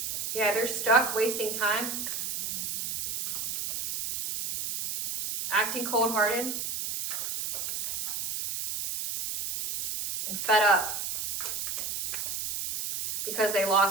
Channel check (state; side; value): noise; right; hiss, 4 dB below the sound